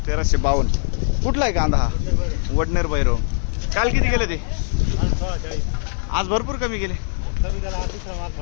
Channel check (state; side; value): silent; right; 64 dB below the other